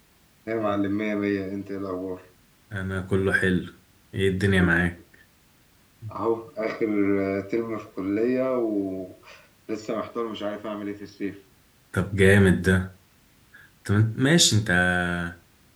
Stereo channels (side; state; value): both; identical; correlation 1.00